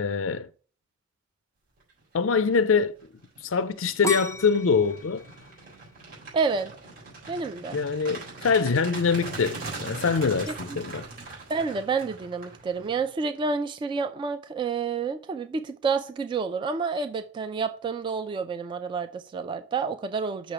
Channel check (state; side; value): normal; both; correlation 0.07